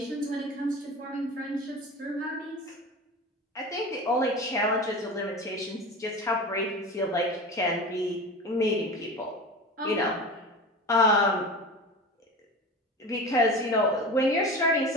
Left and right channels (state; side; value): normal; both; correlation 0.31